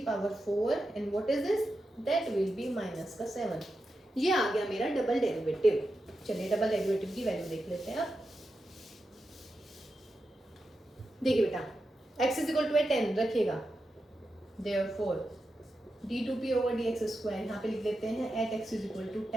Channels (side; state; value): both; normal; correlation 0.89